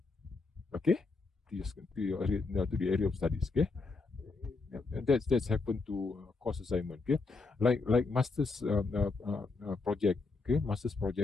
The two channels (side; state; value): right; quieter; 3.9 dB